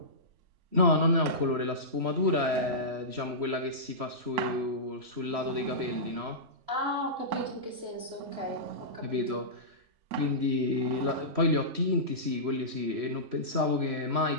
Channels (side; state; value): left; late; 3.1 ms